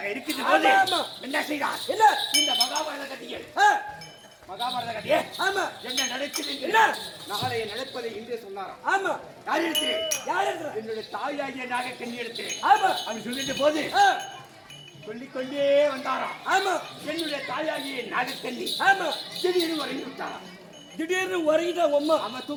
இருக்கின்ற போது ஆமா, ஆமா. என்ன செய்தார் என்ன இந்த மகாபாரத கதையில் ஆ, மகாபாரத கதையே ஆமா என்ன நடக்குது என்ன? நாளைய நடப்பதை இன்றே சொன்னாராம் ஆமா யார் இடத்திலே யார் இருக்கிற என்னுடைய தாயாகிய நாகக்கண்ணி இடத்திலே ஆமா அவர் சொல்லிட்ட போது ஆ, சொல்லிக்கொண்டே வந்தாராம் ஆமா என்னுடைய தாயாகிய நாகக்கண்ணி ஆமா திடீர்னு உறங்கி விட்டாராம் திடீர்னு உறங்கிட்டா உம்மா அம்மா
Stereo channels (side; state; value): both; identical; correlation 1.00